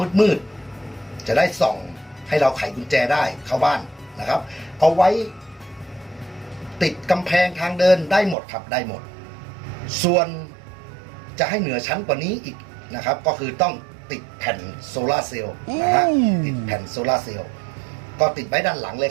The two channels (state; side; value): drops out; left; at 8.3 s